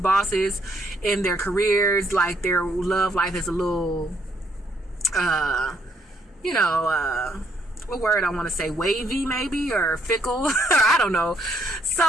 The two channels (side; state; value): both; normal; correlation 0.71